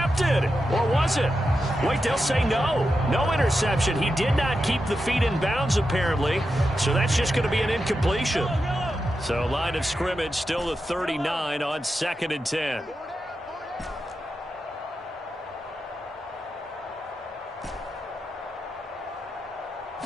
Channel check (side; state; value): both; normal; correlation 0.89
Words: Or was it? Wait, they'll say no. No interception. He did not keep the feet in bounds, apparently. So that's just going to be an incompletion. So line of scrimmage still the 39 on 2nd and 10.